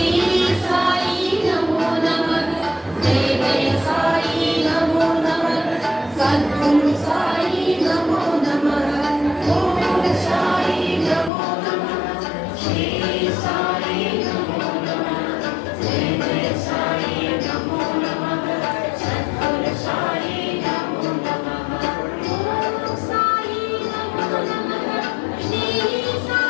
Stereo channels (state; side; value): drops out; right; at 11.3 s